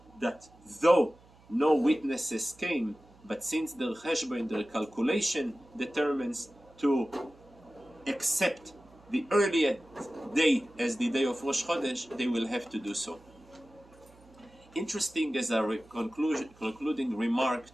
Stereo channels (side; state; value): right; noise; hum, 26 dB below the sound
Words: that though no witnesses came, but since the cheshbon, the calculation determines to accept the earliest day as the day of Rosh Chodesh, they will have to do so. Interesting as a concluding remark